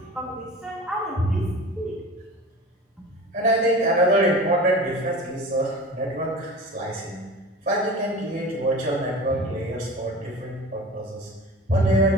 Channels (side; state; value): both; normal; correlation 0.36